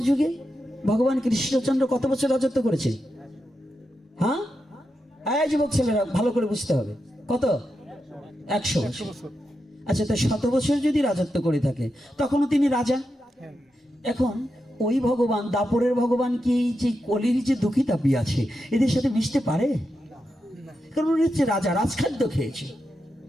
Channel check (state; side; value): normal; both; correlation 0.87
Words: যুগে ভগবান কৃষ্ণচন্দ্র কত বছর রাজত্ব করেছে? হ্যাঁ, যুবক ছেলেরা ভালো করে বুঝতে হবে, কত? 100 বছর। আচ্ছা, তাই 100 বছর যদি রাজত্ব করে থাকে তখনও তিনি রাজা। এখন ওই ভগবান, দাপরের ভগবান কি এই যে কলির যে দুঃখী তাপি আছে এদের সাথে মিশতে পারে? কারণ উনি হচ্ছে রাজা, রাজখাদ্য খেয়েছে।